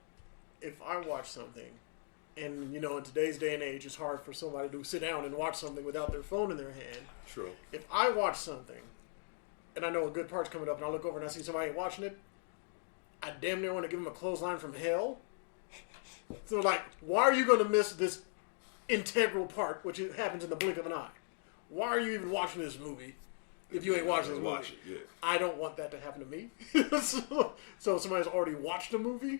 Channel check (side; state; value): right; silent; 52 dB below the other